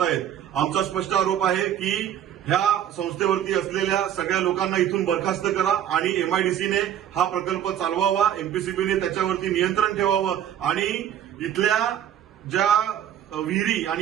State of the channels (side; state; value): left; quieter; 10.4 dB